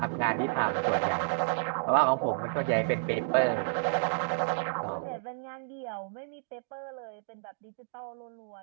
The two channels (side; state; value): left; silent; digital silence